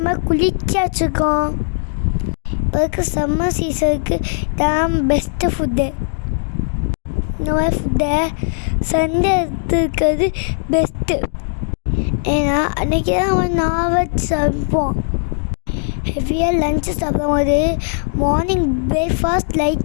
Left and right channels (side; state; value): right; silent; 63 dB below the other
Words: குளிர்ச்சி வச்சுருக்கோம். இப்போ இருக்க சம்மர் சீசனுக்கு தான் பெஸ்ட்டு ஃபுட்டு. இந்த மாதிரி ஃபுட்டை சண்டே எடுத்துருக்கிறது பெஸ்ட்டு. ஏன்னா அன்றைக்கி தான் நம்ம நான்வெஜ் சாப்பிடுவோம். ஹெவியாக லஞ்சு சாப்பிடும்போது மார்னிங் பிரேக்ஃபாஸ்ட்